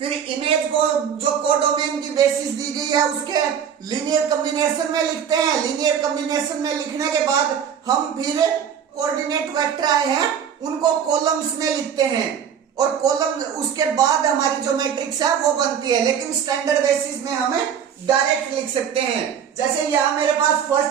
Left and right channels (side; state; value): left; quieter; 8.1 dB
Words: इमेज को जो कोडोमेन की बेसिस दी गई है उसके लीनियर कॉम्बिनेशन में लिखते हैं। लीनियर कॉम्बिनेशन में लिखने के बाद हम फिर कोऑर्डिनेट वेक्टर आए हैं उनको कॉलम्स में लिखते हैं और कॉलम उसके बाद हमारी जो मैट्रिक्स है वो बनती है। लेकिन स्टैंडर्ड बेसिस में हमें डायरेक्ट लिख सकते हैं। जैसे यहां मेरे पास